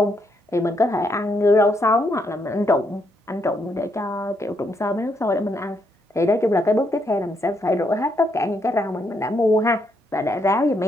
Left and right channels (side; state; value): both; normal; correlation 0.76